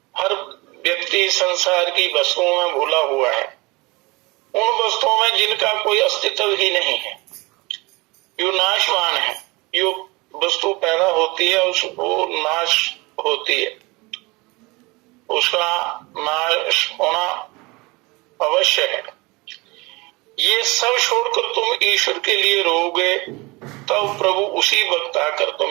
हर व्यक्ति संसार की वस्तुओं में भूला हुआ है, उन वस्तुओं में जिनका कोई अस्तित्व ही नहीं है, जो नाशवान है। जो वस्तु पैदा होती है उसको नाश होती है, उसका नाश होना अवश्य है। ये सब छोड़कर तुम ईश्वर के लिए रोगे, तब प्रभु उसी वक्त आकर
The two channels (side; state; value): left; quieter; 24.4 dB